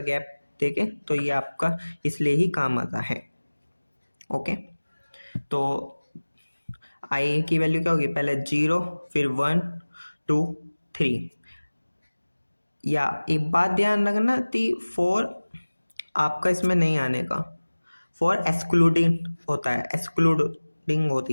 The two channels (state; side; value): inverted; both; correlation -1.00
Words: गैप देके, तो ये आपका इसलिए ही काम आता है। ओके, तो आई की वैल्यू क्या होगी, पहले 0 फिर 1 2 3। या एक बात ध्यान रखना कि फॉर आपका इसमें नहीं आने का, फॉर एक्सक्लूडिंग होता है, एक्सक्लूडिंग